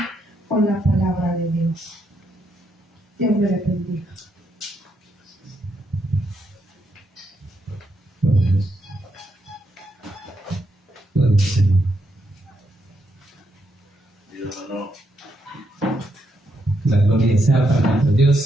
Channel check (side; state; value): both; normal; correlation 0.79